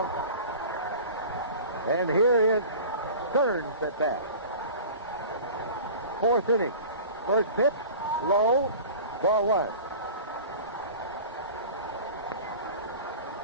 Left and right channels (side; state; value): both; inverted; correlation -0.39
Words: And here is Stearns at bat. 4th inning. First pitch, low, ball 1.